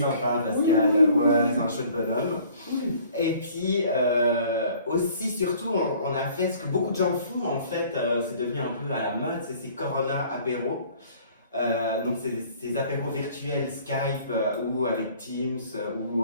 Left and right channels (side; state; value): both; inverted; correlation -0.54